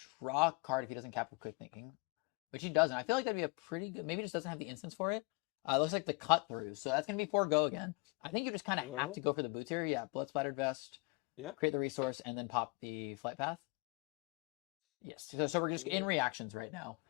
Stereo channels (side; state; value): right; quieter; 29.0 dB